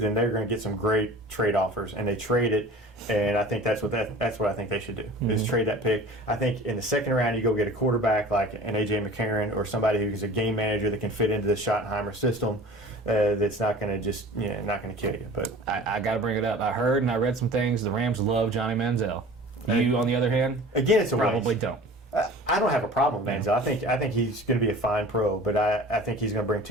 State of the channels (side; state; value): both; normal; correlation 0.42